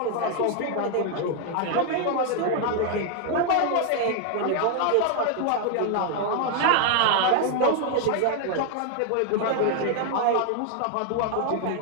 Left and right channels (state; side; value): different; both; correlation 0.00